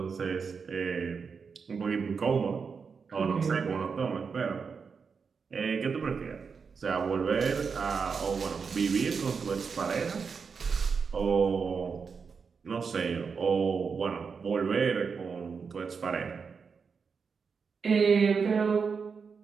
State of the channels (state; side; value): quieter; left; 5.6 dB